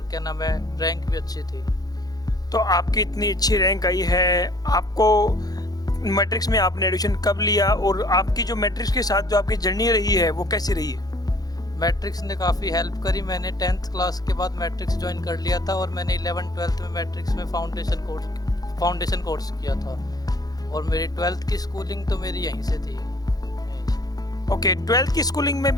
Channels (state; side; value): late; right; 0.19 ms